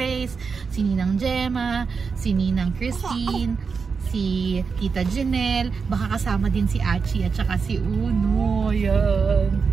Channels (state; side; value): quieter; left; 5.3 dB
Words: si Ninang Gemma, si Ninang Christine, si Tita Janelle, baka kasama din si Achi at saka si Uno. Ayan.